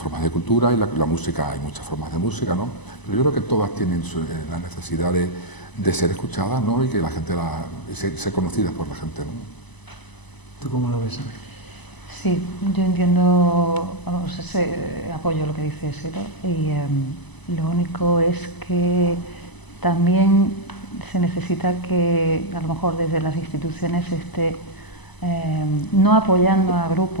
de cultura, y la música, hay muchas formas de música, ¿no? Pero yo creo que todas tienen la necesidad de ser escuchadas, ¿no? Y que la gente ser conocidas por la gente, ¿no? ¿Tú cómo lo ves? Sí, yo entiendo, vamos, apoyo lo que dices, ¿no? Y lo único es que también se necesita que a lo mejor desde las instituciones no apoyando a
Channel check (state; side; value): late; right; 1.0 ms